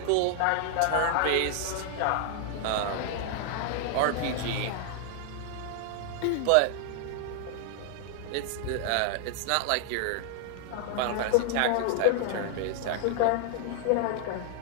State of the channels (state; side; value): different; both; correlation 0.00